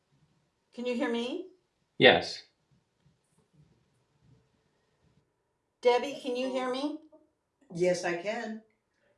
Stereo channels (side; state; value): both; identical; correlation 1.00